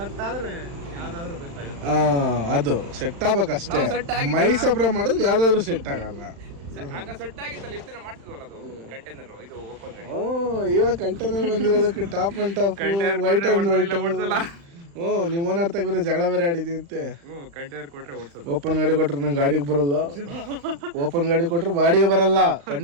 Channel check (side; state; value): left; late; 35 ms